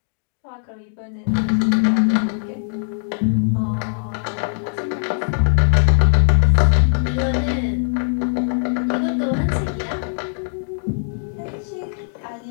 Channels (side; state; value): right; silent; digital silence